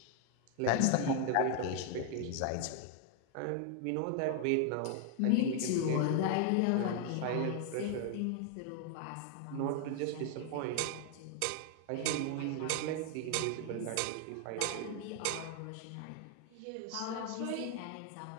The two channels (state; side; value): different; both; correlation 0.00